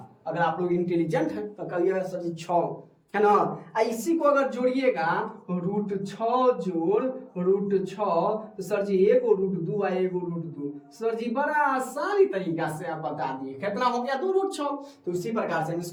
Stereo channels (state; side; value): identical; both; correlation 1.00